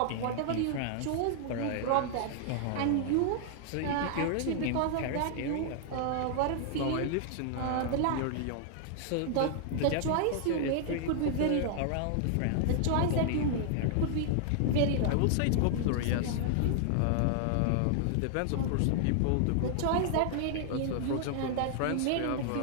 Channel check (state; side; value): different; both; correlation -0.01